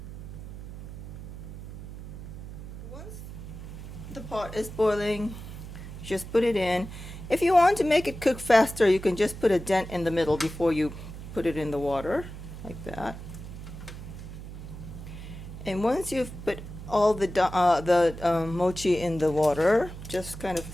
Once the pot is boiling, just put it in. If you want to make it cook faster, you can just put a dent in the middle before you put it in the water, like that. And once you've put all the mochi in the water, just kind of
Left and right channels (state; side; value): noise; right; hum, 11 dB below the sound